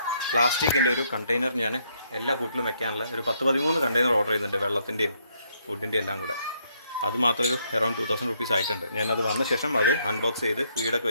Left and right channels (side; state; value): both; inverted; correlation -0.72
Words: പ്ലാസ്റ്റിക്കിൻ്റെ ഒരു കണ്ടെയ്നർ ഞാൻ എല്ലാ കൂട്ടിലും വെക്കാനുള്ള ഒരു 10-13 കണ്ടെയ്നർ ഓർഡർ ചെയ്യുന്നുണ്ട്, വെള്ളത്തിൻ്റെയും ഫുഡിൻ്റെയും എല്ലാം കൂടെ. അത് മാത്രം ഒരു അറൗണ്ട് 2000 റുപ്പീസ് ആയിട്ടുണ്ട്. ഞാനത് വന്ന ശേഷം അത് അൺബോക്സ് ചെയ്ത് ഫീഡൊക്കെ